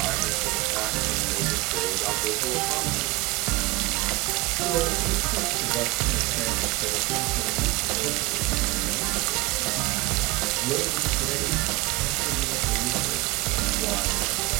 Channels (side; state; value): left; quieter; 22.1 dB